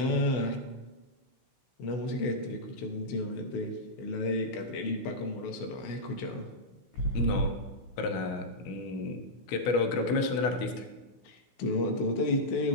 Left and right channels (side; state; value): right; late; 16 ms